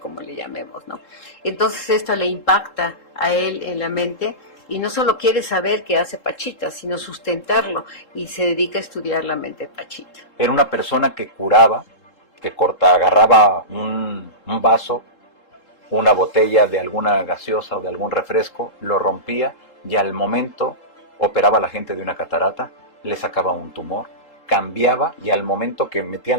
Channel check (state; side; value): late; right; 3.7 ms